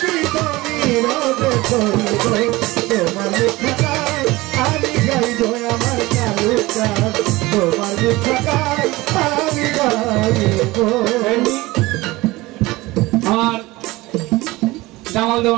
তো নীরবে সইব। তোমার লেখা গান আমি গাইব, আমার কালো গান তোমার লেখা গান আমি গাইব। আমার জামাল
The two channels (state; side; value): quieter; left; 20.3 dB